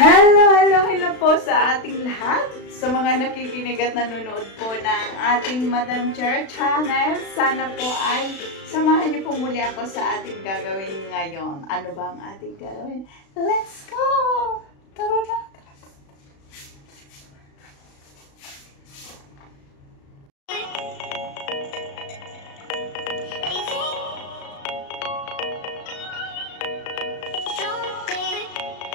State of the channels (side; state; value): right; late; 36 ms